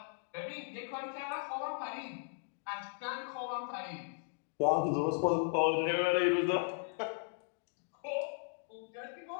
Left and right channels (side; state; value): right; silent; 53 dB below the other